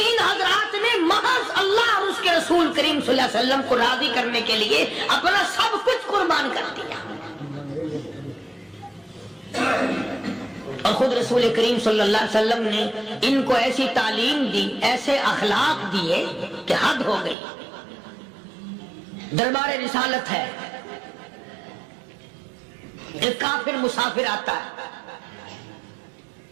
हजरात ने महज अल्लाह और उसके रसूल करीम सल्लल्लाहु अलैहि वसल्लम को राजी करने के लिए अपना सब कुछ कुर्बान कर दिया। और खुद रसूल करीम सल्लल्लाहु अलैहि वसल्लम ने इनको ऐसी तालीम दी, ऐसे अखलाक दिए कि हद हो गई। दरबार रिसालत है, एक काफिर मुसाफिर आता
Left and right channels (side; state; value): left; drops out; at 17.4 s